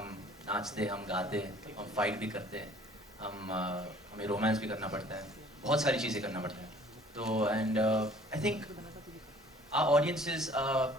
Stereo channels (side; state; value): both; normal; correlation 0.53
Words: नाचते हम गाते हम फाइट भी करते हैं हमें रोमांस भी करना पड़ता है बहुत सारी चीज़ें करना पड़ता है तो and I think our audiences